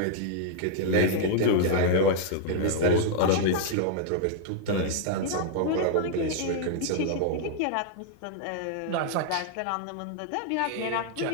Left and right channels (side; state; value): both; different; correlation -0.01